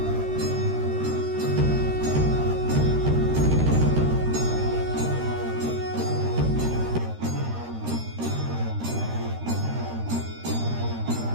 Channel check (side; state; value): left; late; 13 ms